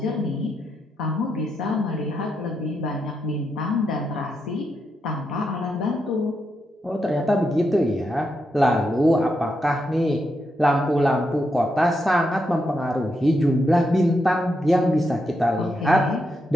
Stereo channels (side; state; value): both; normal; correlation 0.83